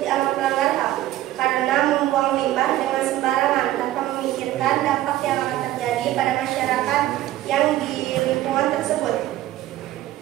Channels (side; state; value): left; quieter; 14.5 dB